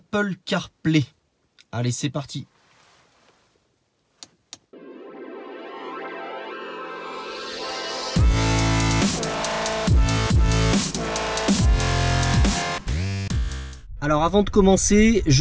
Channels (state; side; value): identical; both; correlation 1.00